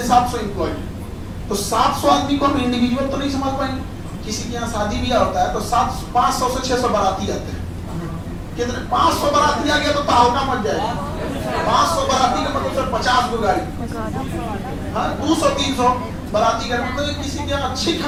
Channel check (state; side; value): identical; both; correlation 1.00